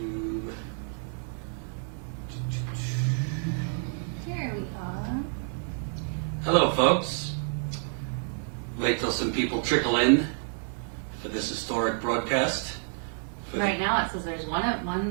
Here we are. Hello, folks. Wait till some people trickle in for this historic broadcast. Right now it says there's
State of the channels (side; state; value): left; silent; 59 dB below the other